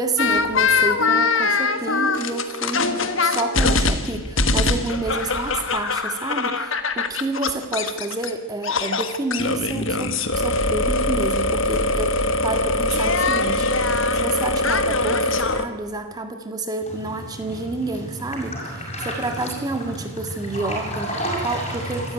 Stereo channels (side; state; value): both; normal; correlation 0.11